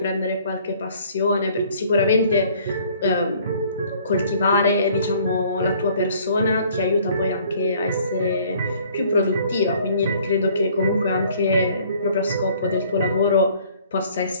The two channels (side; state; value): both; inverted; correlation -0.57